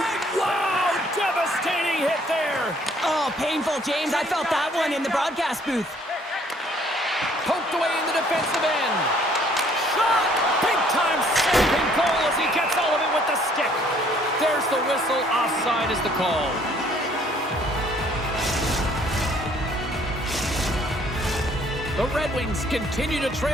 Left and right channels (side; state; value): both; normal; correlation 0.61